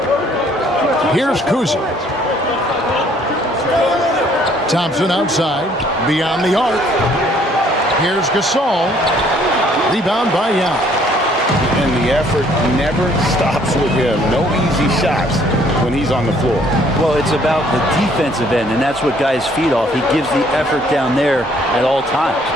Here's COUSY. Thompson outside, beyond the arc. Here's GASOL. Rebound by Young. And the effort never stops with him. No easy shots when he's on the floor. Well, it's about the defensive end, and that's what guys feed off. He gives the effort down there at all times.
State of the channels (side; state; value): both; normal; correlation 0.62